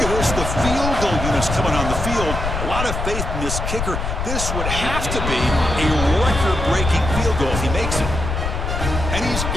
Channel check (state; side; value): noise; left; rumble, 3 dB below the sound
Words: at this, the field goal units coming on the field. A lot of faith in this kicker. This would have to be a record-breaking field goal if he makes it. And he's